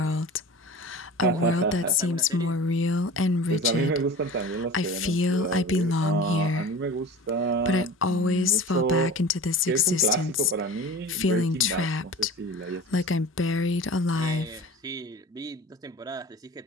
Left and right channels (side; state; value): both; normal; correlation 0.37